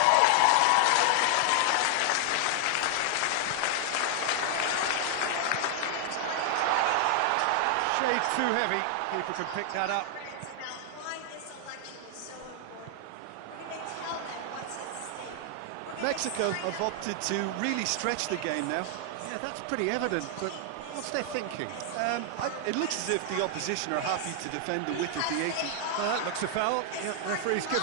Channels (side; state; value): both; different; correlation 0.00